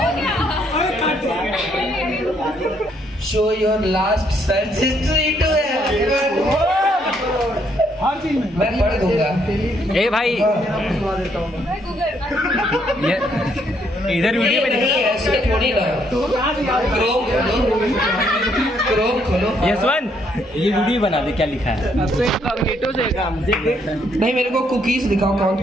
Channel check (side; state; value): both; normal; correlation 0.71